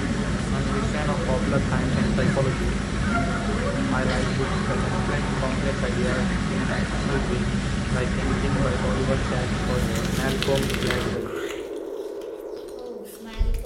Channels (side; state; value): both; identical; correlation 1.00